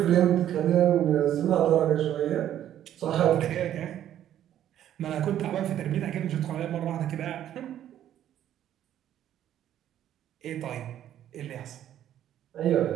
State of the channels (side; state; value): left; quieter; 11.3 dB